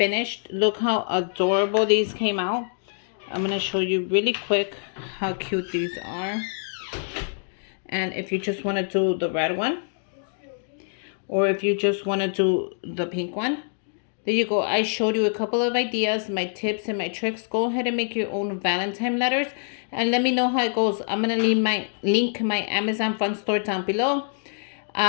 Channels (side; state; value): right; silent; digital silence